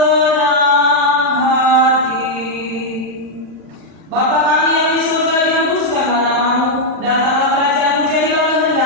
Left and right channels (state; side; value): late; left; 39 ms